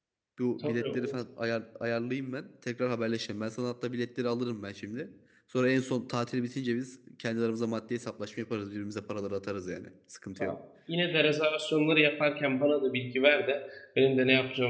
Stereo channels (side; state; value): both; identical; correlation 1.00